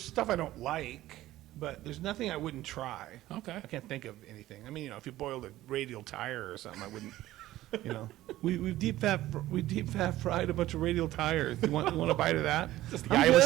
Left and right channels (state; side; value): quieter; left; 15.4 dB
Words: I don't like, but there's nothing I wouldn't try. Okay. I can't think of anything. I mean, you know, if you boiled a radial tire or something, I wouldn't. You know, we deep fat fried a bunch of radial tires. You want a bite of that? Just the Iowa